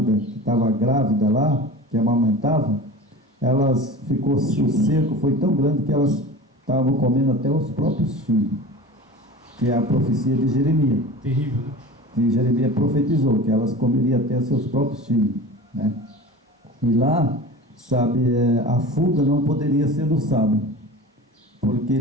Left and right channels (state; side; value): normal; both; correlation 0.35